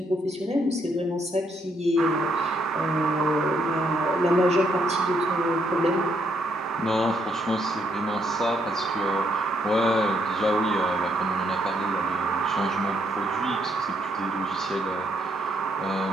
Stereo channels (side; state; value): both; normal; correlation 0.73